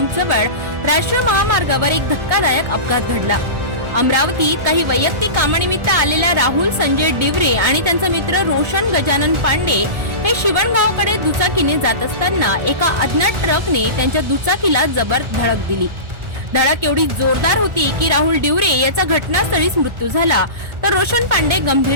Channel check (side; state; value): left; late; 1.4 ms